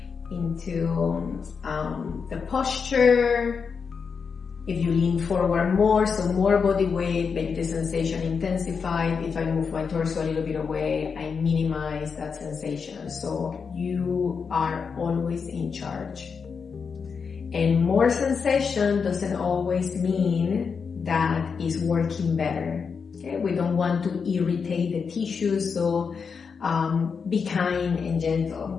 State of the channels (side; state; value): right; quieter; 5.8 dB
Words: the posture? If you lean forward more, so more body weight, maybe the sensation intensified. If I move my torso a little bit away, I minimize that sensation. So you are always in charge. And more sensation doesn't always mean that it's working better. Okay, we don't want to irritate the tissues, so be kind and